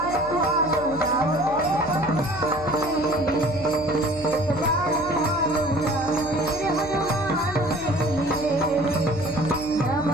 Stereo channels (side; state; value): left; noise; hum, 15 dB below the sound